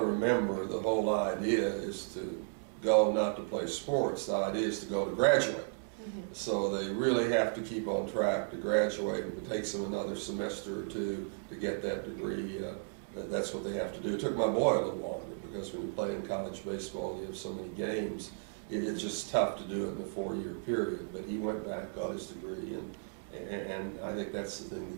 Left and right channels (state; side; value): silent; left; digital silence